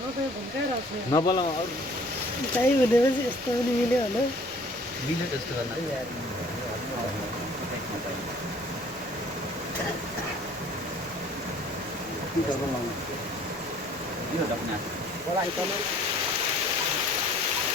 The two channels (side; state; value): left; noise; rumble, 27 dB below the sound